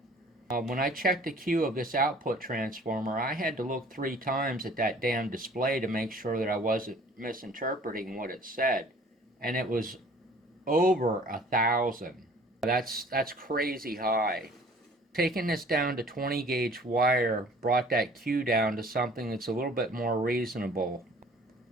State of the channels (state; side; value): normal; both; correlation 0.51